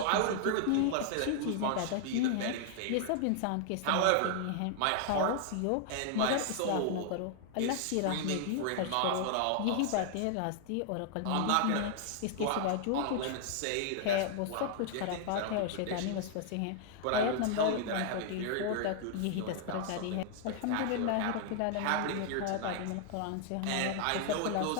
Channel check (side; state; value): both; different; correlation 0.00